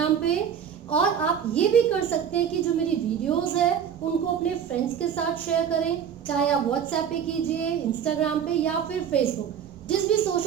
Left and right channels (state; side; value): quieter; left; 8.2 dB